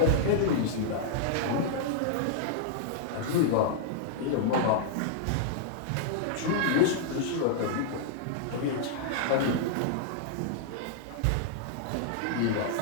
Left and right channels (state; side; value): different; both; correlation -0.01